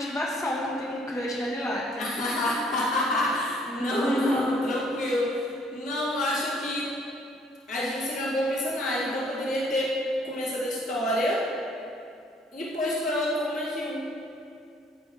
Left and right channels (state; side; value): normal; both; correlation 0.62